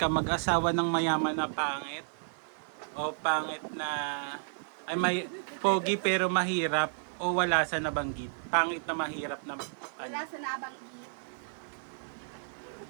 mag-asawa ng mayaman na pangit o pangit na ay may pogi pero mahirap o wala sa nabanggit. Pangit na mahirap na Wala sa nabanggit.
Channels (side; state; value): left; silent; digital silence